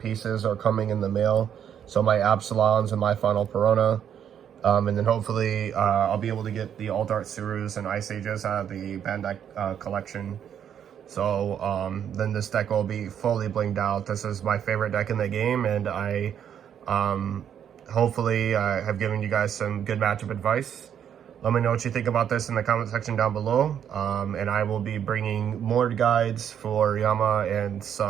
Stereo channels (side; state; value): left; quieter; 9.0 dB